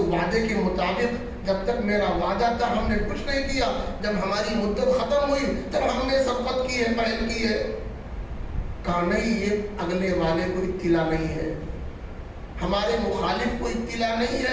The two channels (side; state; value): both; identical; correlation 1.00